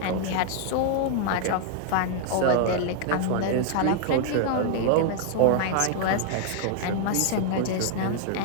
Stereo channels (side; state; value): both; different; correlation 0.00